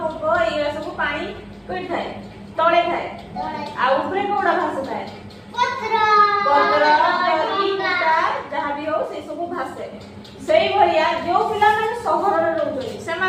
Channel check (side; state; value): both; identical; correlation 1.00